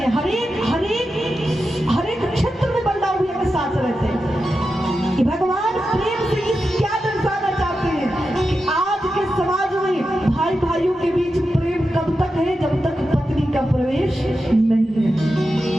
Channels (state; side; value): normal; both; correlation 0.90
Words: हर एक क्षेत्र में बलदाऊ भैया के साथ रहते हैं। कि भगवान प्रेम से इस क्या दर्शाना चाहते हैं कि आज के समाज में भाई भाइयों के बीच प्रेम कब तक है? जब तक पत्नी का प्रवेश नहीं है।